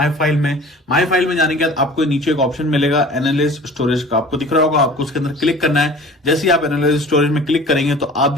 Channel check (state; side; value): normal; both; correlation 0.44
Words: फाइल में जाने के बाद आपको नीचे एक ऑप्शन मिलेगा एनालिज स्टोरेज का, आपको दिख रहा होगा। आपको उसके अंदर क्लिक करना है। जैसे ही आप एनालिज स्टोरेज में क्लिक करेंगे तो आप